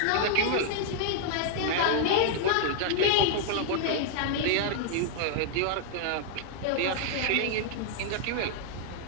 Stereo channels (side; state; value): both; different; correlation -0.01